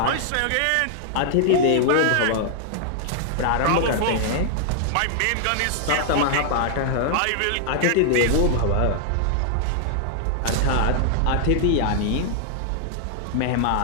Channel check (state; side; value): different; both; correlation -0.01